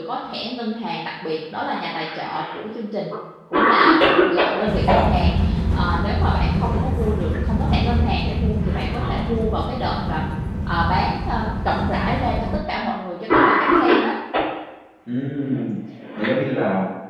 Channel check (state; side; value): identical; both; correlation 1.00